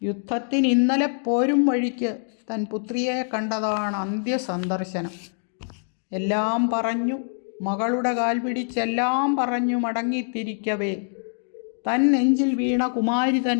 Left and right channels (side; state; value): right; silent; digital silence